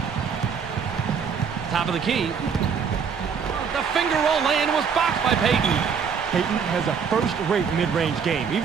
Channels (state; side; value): quieter; left; 6.5 dB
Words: Top of the key. The finger roll lay-in was blocked by Payton. Payton has a first-rate mid-range game.